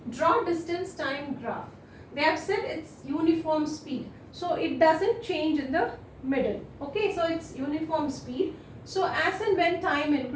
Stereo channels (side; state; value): both; identical; correlation 1.00